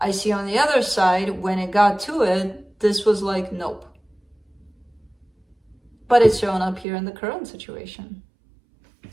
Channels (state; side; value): drops out; left; at 6.9 s